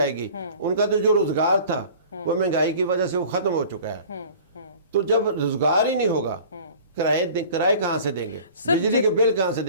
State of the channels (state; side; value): inverted; both; correlation -0.45